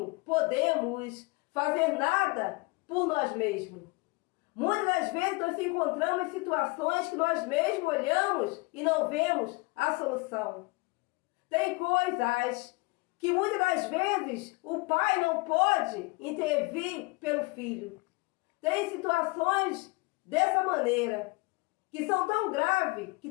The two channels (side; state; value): right; quieter; 26.2 dB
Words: podemos fazer nada por nós mesmos. Muitas das vezes nós encontramos situações que nós mesmos olhamos e não vemos a solução. Tem coisas que muitas das vezes o pai não pode intervir pelo filho. Tem situações dessa maneira, que são tão graves, que